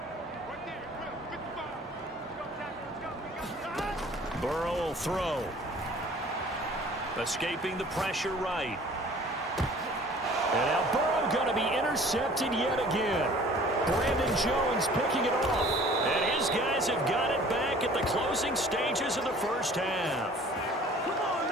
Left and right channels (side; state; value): both; normal; correlation 0.50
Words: Burrow will throw. Escaping the pressure right. And now Burrow going to be intercepted yet again. Brandon Jones picking it off. And his guys have got it back at the closing stages of the first half.